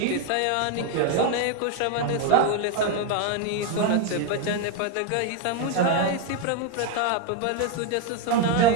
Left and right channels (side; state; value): both; different; correlation 0.01